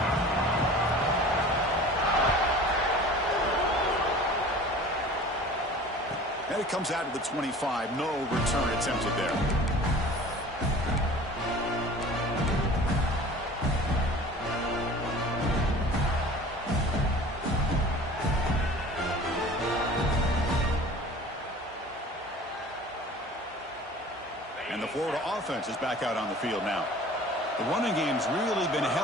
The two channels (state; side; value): normal; both; correlation 0.43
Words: And it comes out to the 25. No return attempted there. And the Florida offense is back out on the field now. The running game's really been